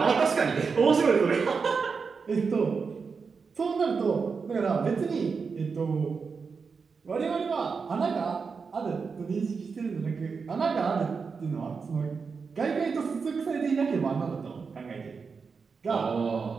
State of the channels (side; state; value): left; quieter; 5.2 dB